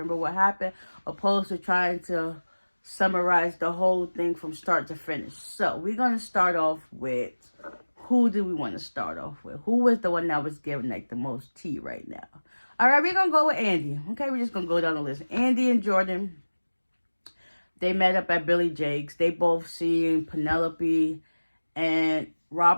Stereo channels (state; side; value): inverted; both; correlation -1.00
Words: what happened opposed to trying to summarize the whole thing from start to finish. So we're going to start off with, who do we want to start off with? Who was the one that was giving like the most tea right now? All right, we're going to go with Andy. Okay, we're just going to go down the list. Andy and Jordan, they met up at Billy Jake's. They both seen Penelope and